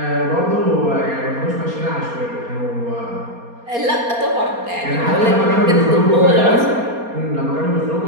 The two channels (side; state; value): left; late; 4.3 ms